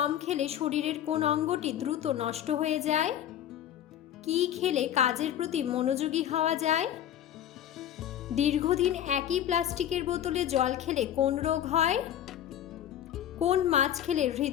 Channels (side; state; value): right; quieter; 10.8 dB